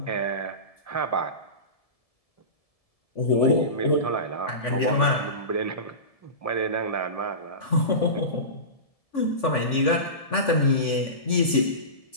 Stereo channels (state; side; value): late; right; 1.7 ms